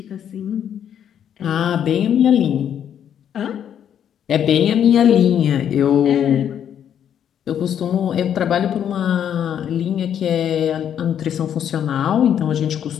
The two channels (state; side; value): quieter; right; 9.3 dB